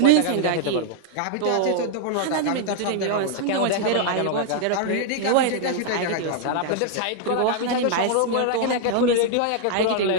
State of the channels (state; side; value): different; both; correlation 0.00